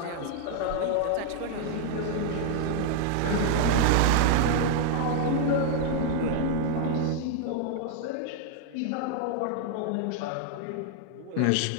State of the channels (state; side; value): different; both; correlation 0.00